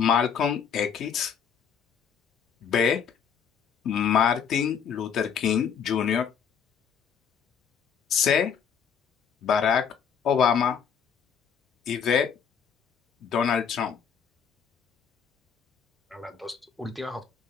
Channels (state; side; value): quieter; right; 7.3 dB